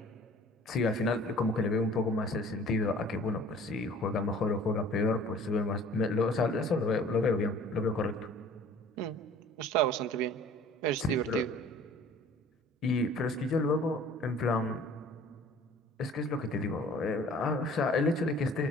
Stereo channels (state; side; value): normal; both; correlation 0.49